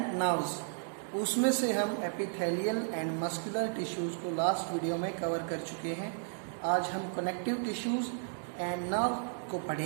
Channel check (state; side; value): silent; left; digital silence